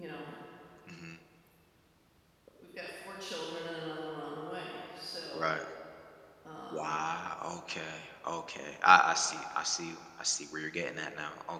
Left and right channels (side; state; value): both; identical; correlation 1.00